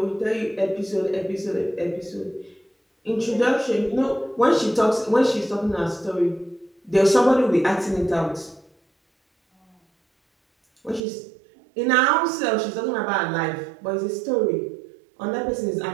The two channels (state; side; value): drops out; left; at 11.0 s